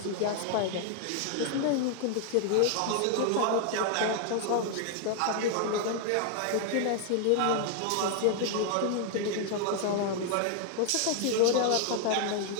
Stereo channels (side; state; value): both; different; correlation 0.00